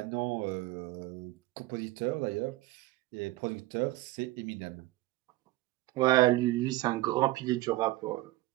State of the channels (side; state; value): left; quieter; 18.6 dB